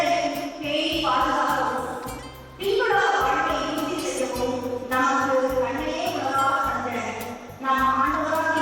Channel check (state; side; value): identical; both; correlation 1.00